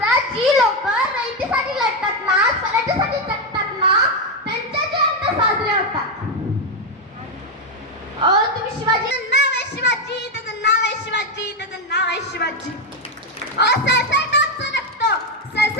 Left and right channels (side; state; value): both; normal; correlation 0.06